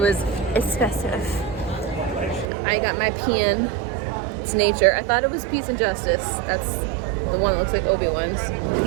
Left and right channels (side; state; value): left; drops out; at 2.5 s